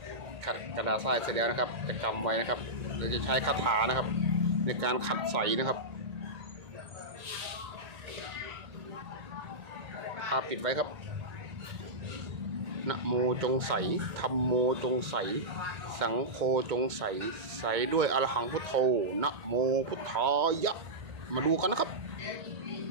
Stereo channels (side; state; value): left; late; 1.8 ms